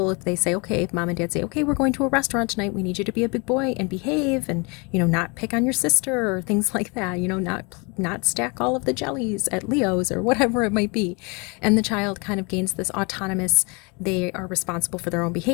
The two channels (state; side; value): quieter; right; 30.3 dB